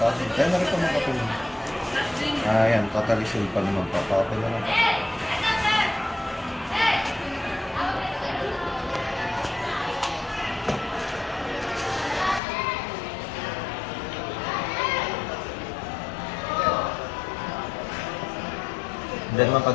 ko. Kaya na rin ito mga kapatid. Yan. Totally seal pa naman. Papakapin na lang. Then naman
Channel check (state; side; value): drops out; right; at 12.4 s